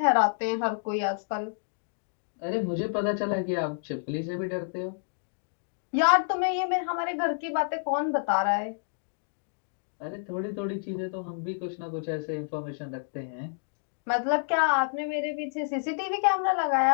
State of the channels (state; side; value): silent; right; digital silence